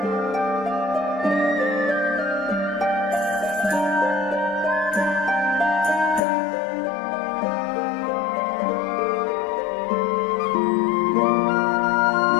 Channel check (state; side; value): drops out; right; at 6.2 s